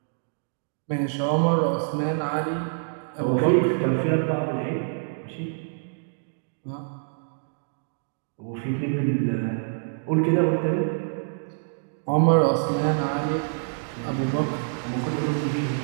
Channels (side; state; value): left; silent; digital silence